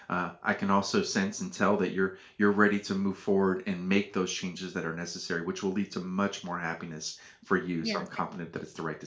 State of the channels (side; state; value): both; identical; correlation 1.00